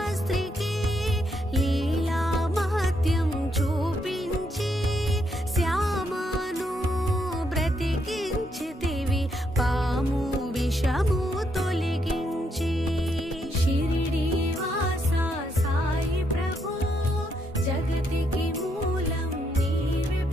లీలా మహత్యం చూపించి శ్యామను బ్రతికించితివి, పాము విషము తొలగించి. షిరిడి వాస సాయి ప్రభు, జగతికి మూలం నీవే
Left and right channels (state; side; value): normal; both; correlation 0.77